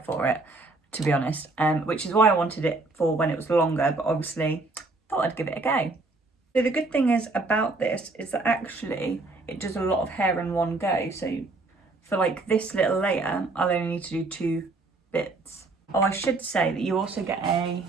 for it, to be honest, which is why I wanted it for when it was longer, but obviously thought I'd give it a go. So the good thing is about this is that actually it does a lot of hair in one go. So for like this little layer, I'll only need to do 2 bits. Oh, I should say that you also get a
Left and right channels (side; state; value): left; quieter; 3.3 dB